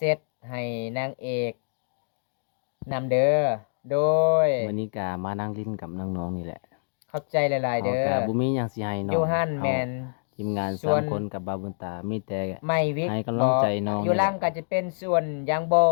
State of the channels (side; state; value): right; silent; digital silence